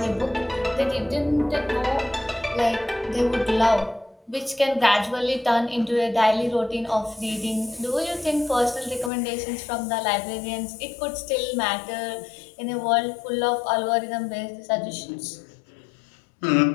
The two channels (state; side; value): drops out; right; at 9.1 s